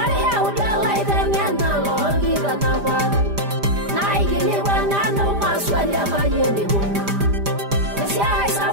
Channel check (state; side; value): late; left; 5.0 ms